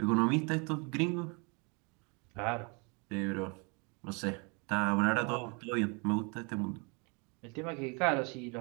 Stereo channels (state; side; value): quieter; left; 32.5 dB